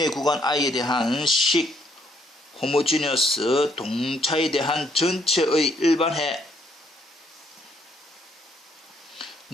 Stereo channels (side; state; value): both; normal; correlation 0.70